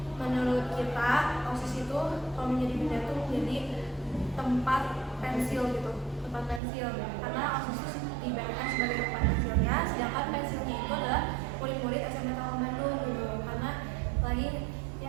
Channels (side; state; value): left; drops out; at 6.6 s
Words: Menurut kita, OSIS itu kalau menjadi benda itu menjadi tempat pensil gitu, tempat pensil. Karena OSIS itu diibaratkan sebagai tempat pensilnya, sedangkan pensilnya itu adalah murid-murid SMK Kampung Bandung gitu. Karena lagi